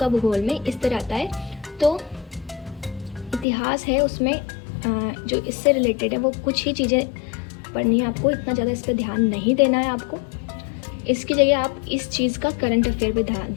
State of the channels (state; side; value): drops out; right; at 3.5 s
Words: भूगोल में इस तरह आता है। तो इतिहास है, उसमें जो इससे रिलेटेड है वो कुछ ही चीज़ें पढ़नी है आपको, इतना ज़्यादा इस पर ध्यान नहीं देना है आपको। इसकी जगह आप इस चीज़ का करंट अफेयर पे